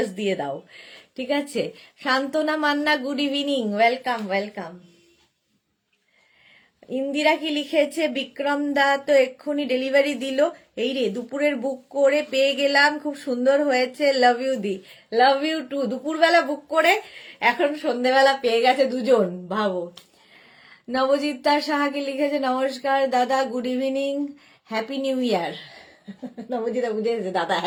দিয়ে দাও, ঠিক আছে? Santana Manna, good evening, welcome welcome. Indira কি লিখেছে? বিক্রম দা তো এক্ষুনি ডেলিভারি দিল, এই রে দুপুরের বুক করে পেয়ে গেলাম, খুব সুন্দর হয়েছে, লাভ ইউ দি, লাভ ইউ টু। দুপুরবেলা বুক করে এখন সন্ধ্যেবেলা পেয়ে গেছে দুজন, ভাবো। নবজিৎ সাহা কি লিখেছে? নমস্কার দাদা, good evening, happy new year. Nabajita বুঝেছে দাদা,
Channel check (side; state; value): both; identical; correlation 1.00